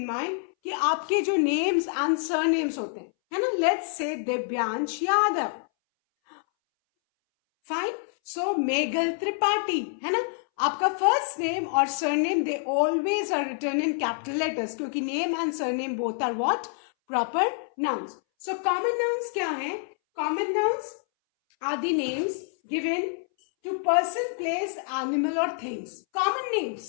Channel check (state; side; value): silent; right; 60 dB below the other